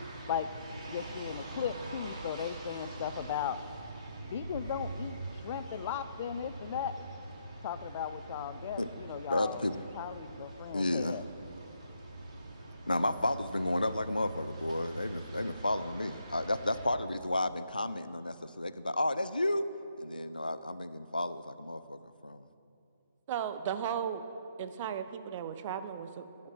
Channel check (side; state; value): both; inverted; correlation -0.75